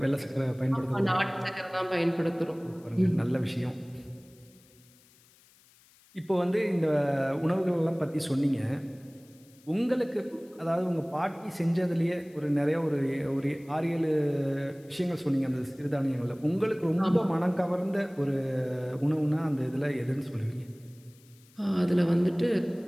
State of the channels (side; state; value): left; noise; hiss, 29 dB below the sound